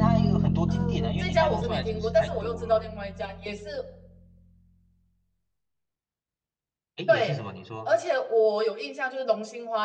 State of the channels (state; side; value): identical; both; correlation 1.00